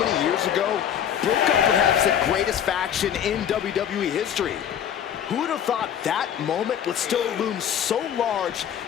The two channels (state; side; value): quieter; right; 9.3 dB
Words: many years ago broke up perhaps the greatest faction in WWE history. Who would have thought that moment would still loom so large